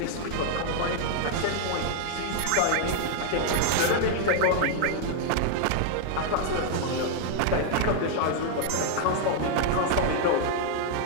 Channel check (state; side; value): different; both; correlation -0.01